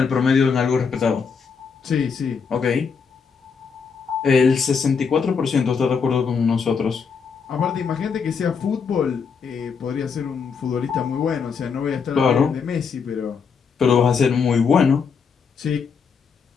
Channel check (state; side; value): quieter; right; 5.9 dB